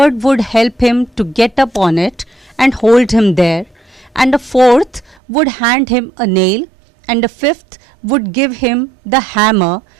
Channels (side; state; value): left; drops out; at 5.2 s